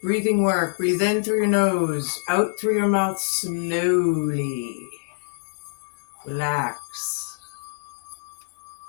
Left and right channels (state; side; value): silent; right; digital silence